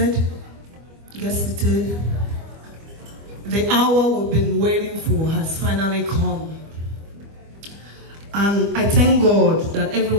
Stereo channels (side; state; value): left; late; 25 ms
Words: Get seated. The hour we've been waiting for has finally come. And I thank God that every